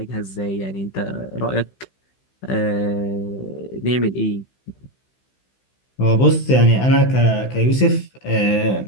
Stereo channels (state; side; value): late; right; 15 ms